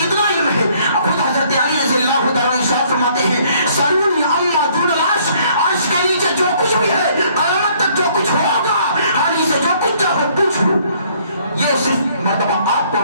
علم ہے۔ خود حضرت علی رضی اللہ تعالیٰ عنہ ارشاد فرماتے ہیں سلونی عما دون العرش، عرش کے نیچے جو کچھ بھی ہے، قیامت تک جو کچھ ہوگا، علی سے جو کچھ چاہو پوچھ لو۔ یہ صرف مرتبہ آپ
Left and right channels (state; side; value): inverted; both; correlation -0.62